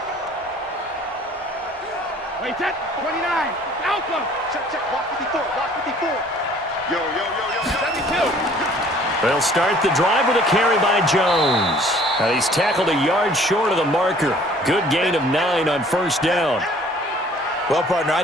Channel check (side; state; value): both; normal; correlation 0.54